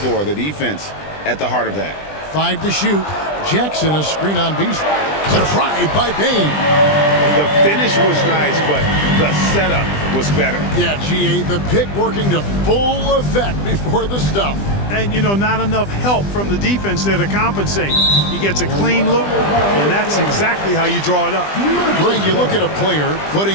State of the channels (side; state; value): right; late; 20 ms